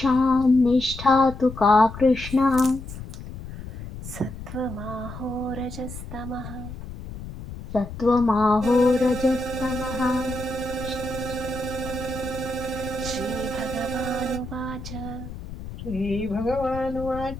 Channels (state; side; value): noise; left; rumble, 11 dB below the sound